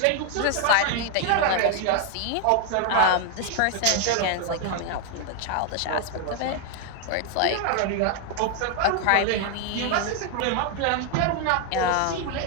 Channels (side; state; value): both; different; correlation 0.00